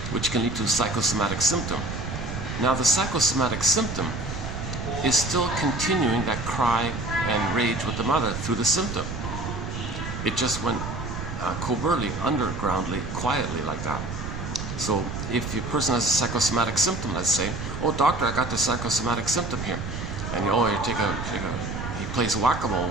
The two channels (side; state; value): right; noise; rumble, 6 dB below the sound